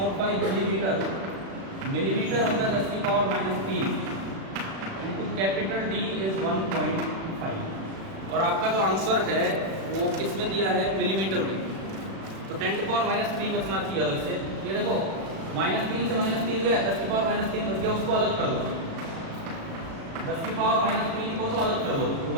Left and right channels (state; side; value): late; left; 36 ms